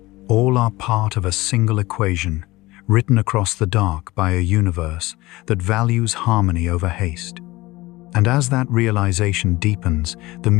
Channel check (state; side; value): quieter; right; 20.0 dB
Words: all are part of a single equation, written across the dark by a universe that values harmony over haste. And as that realization deepens, the